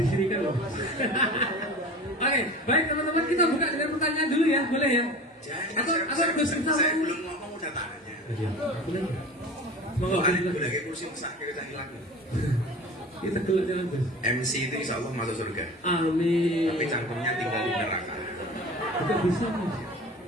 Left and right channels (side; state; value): both; normal; correlation 0.37